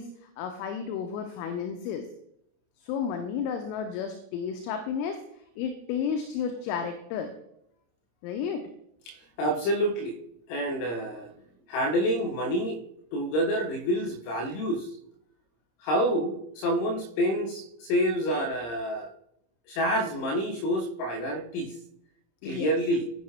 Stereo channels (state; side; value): late; right; 26 ms